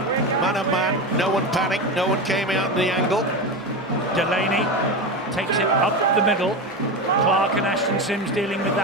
Man on man, no one panicked, no one came out in the angle. Delaney takes it up the middle. Clark and Ashton Sims dealing with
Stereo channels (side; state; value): both; normal; correlation 0.20